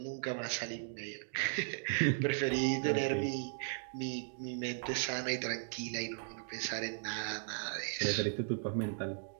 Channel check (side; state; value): left; silent; digital silence